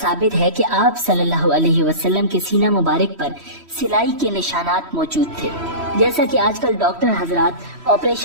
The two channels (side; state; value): left; late; 3.1 ms